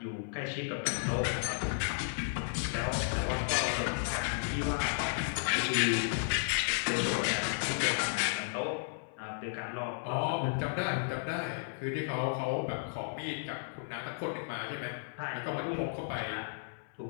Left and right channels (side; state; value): right; silent; 55 dB below the other